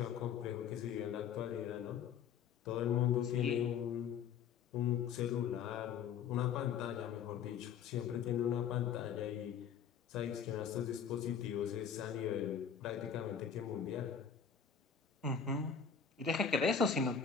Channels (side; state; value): right; quieter; 7.3 dB